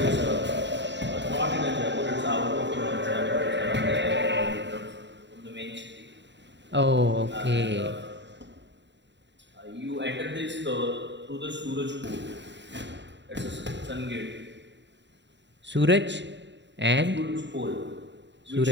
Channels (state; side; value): late; left; 0.52 ms